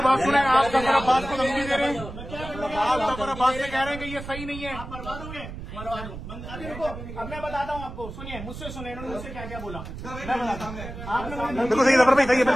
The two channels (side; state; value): right; noise; rumble, 11 dB below the sound